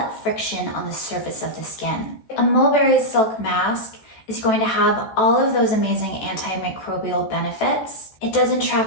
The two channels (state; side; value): late; right; 14 ms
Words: friction on the surface of the skin. A mulberry silk mask is going to have all of those amazing antimicrobial benefits. It doesn't